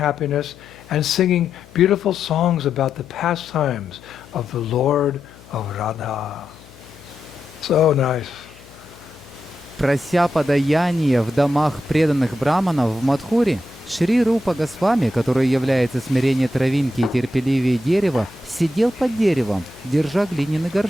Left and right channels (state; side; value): noise; left; hum, 23 dB below the sound